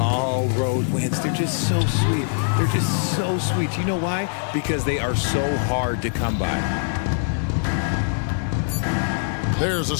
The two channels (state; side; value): silent; right; digital silence